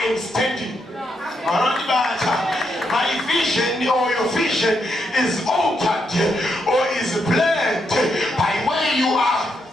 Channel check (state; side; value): normal; both; correlation 0.80